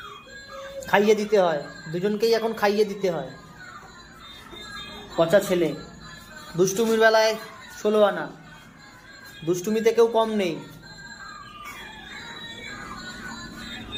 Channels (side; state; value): both; identical; correlation 1.00